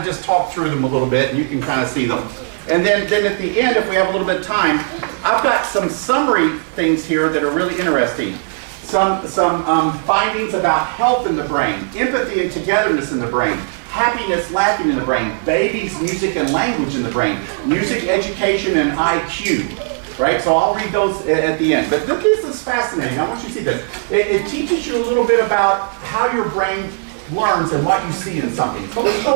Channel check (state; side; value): silent; left; digital silence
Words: just talk through them a little bit, and you can kind of see them. And then at the end, if we have a little bit of time, I've got some summary things here that are really interesting. Some findings about health in the brain, empathy and togetherness in the brain, happiness, laughing in the brain, babies, music and language in the brain, music, education, and IQ. Right? So I'll read those at the end. But this is fascinating. I want you to see this. It teaches you a little bit about how your brain learns and what you see in something. So let's